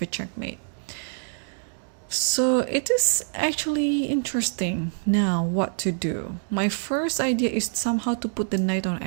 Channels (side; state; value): left; silent; digital silence